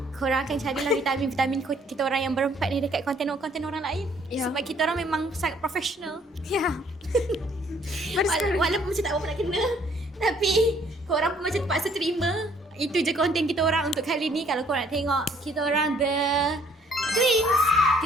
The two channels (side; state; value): both; normal; correlation 0.63